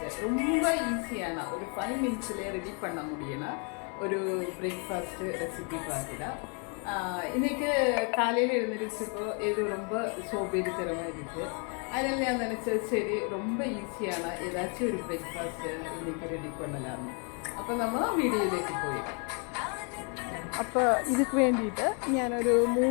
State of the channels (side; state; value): right; quieter; 37.3 dB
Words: ரொம்ப ஈஸியான ஒரு 5 மினிட்ஸ்லேயே ரெடி பண்ண முடியும்னா ஒரு பிரேக்ஃபாஸ்ட்டு ரெசிபி பார்க்கலாம். இன்றைக்கி காலையில் எழுந்திரிச்சப்போ இது ரொம்ப சோம்பேறித்தனமாக இருக்குது. அதனால் நான் நினச்சது சரி ரொம்ப ஈஸியான ஏதாச்சும் ஒரு பிரேக்ஃபாஸ்ட்டு இன்றைக்கி ரெடி பண்ணலாம்னு. அப்போ நம்ம വീഡിയോയിലേക്ക് പോയി. അപ്പോൾ ഇതിക്ക് വേണ്ടിയിട്ട് ഞാനൊരു